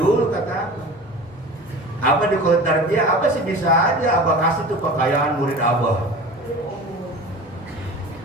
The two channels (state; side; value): normal; both; correlation 0.37